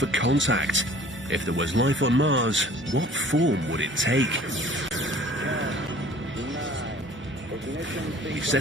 contact. If there was life on Mars, what form would it take? We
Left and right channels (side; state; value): both; normal; correlation 0.50